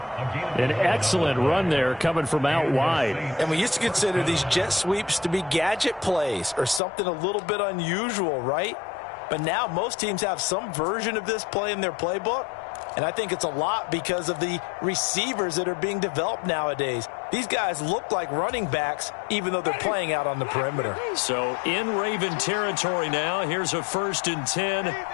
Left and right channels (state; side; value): drops out; right; at 6.8 s